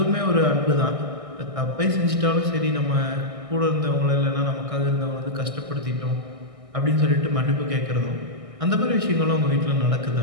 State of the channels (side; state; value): left; late; 1.6 ms